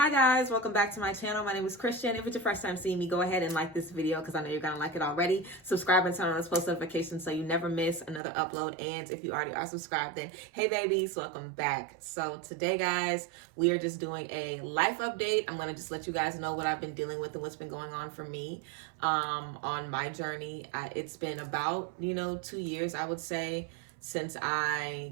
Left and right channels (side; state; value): left; drops out; at 8.2 s